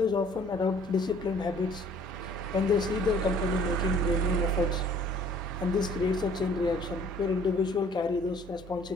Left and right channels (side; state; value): both; normal; correlation 0.56